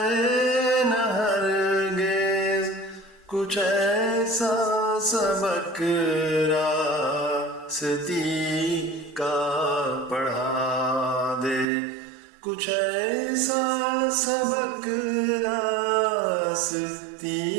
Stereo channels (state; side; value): drops out; left; at 11.7 s